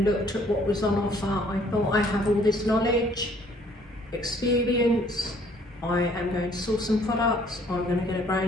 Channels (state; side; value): normal; both; correlation 0.60